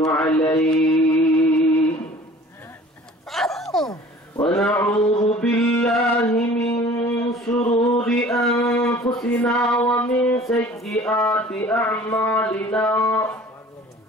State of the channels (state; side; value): normal; both; correlation 0.47